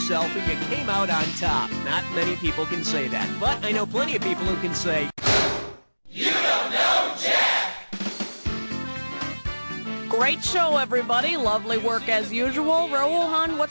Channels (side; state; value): both; inverted; correlation -1.00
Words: and you came out on top. Not many people can say that, but I know plenty of people who can say, "You don't know Jack!" Great show, everybody. Lovely work as usual. Rohan,